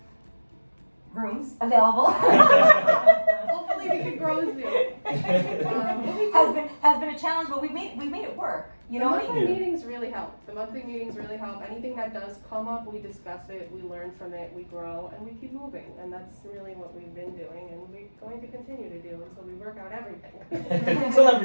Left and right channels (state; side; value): inverted; both; correlation -1.00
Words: rooms available Hopefully we can grow soon. has been a challenge, but we made it work. You know The what I monthly mean? meetings really help. The monthly meetings really help. Anything that does come up, we discuss it, we learn from it, we grow, and we keep moving. And that's really what we've been doing, and we're going to continue to do until we work out everything. Until